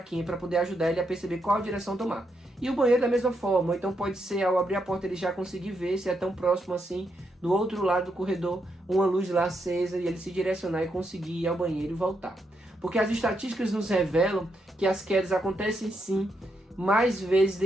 para poder ajudar ele a perceber qual direção tomar. E o banheiro da mesma forma, então pode ser ao abrir a porta ele já conseguir ver se é tão próximo assim, do outro lado do corredor, uma luz lá acesa e ele se direcionar e conseguir ir ao banheiro e voltar. Porque as estatísticas nos revelam que as quedas acontecem sim, mais vezes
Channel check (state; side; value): normal; both; correlation 0.80